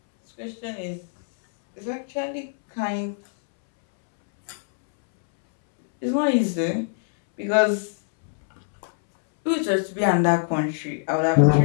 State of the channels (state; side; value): silent; right; 63 dB below the other